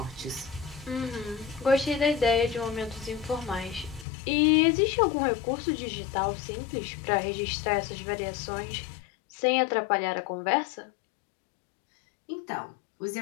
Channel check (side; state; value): right; drops out; at 4.0 s